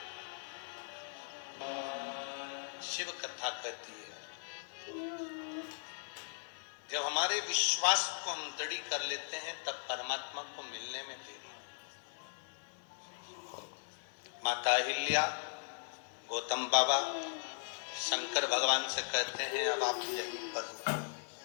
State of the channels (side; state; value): right; silent; digital silence